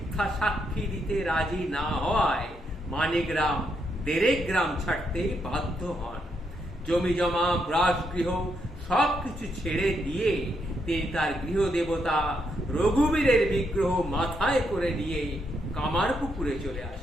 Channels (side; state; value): both; normal; correlation 0.79